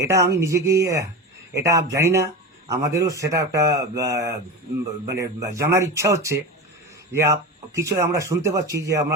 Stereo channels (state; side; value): normal; both; correlation 0.25